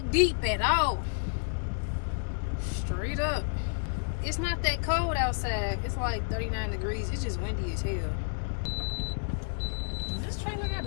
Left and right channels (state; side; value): silent; right; digital silence